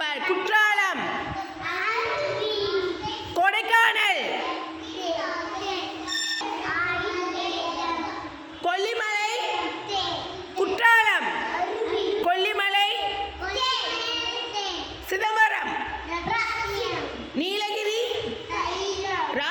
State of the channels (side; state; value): both; identical; correlation 1.00